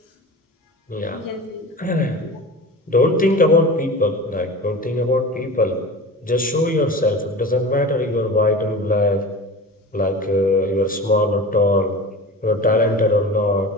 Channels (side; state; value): both; normal; correlation 0.34